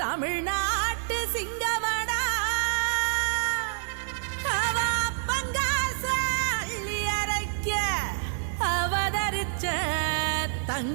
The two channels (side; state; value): left; silent; digital silence